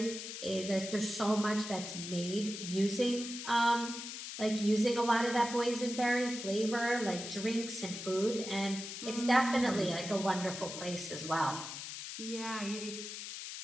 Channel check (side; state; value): left; noise; hiss, 8 dB below the sound